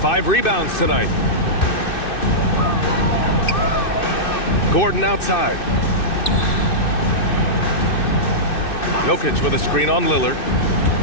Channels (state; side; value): late; right; 2.6 ms